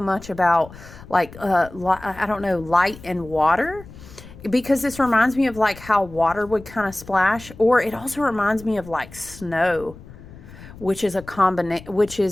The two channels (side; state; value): left; noise; rumble, 18 dB below the sound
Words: about, I don't know, light and water. because this reminds me of like how water would kind of splash, or it also reminds me of like snow, which is a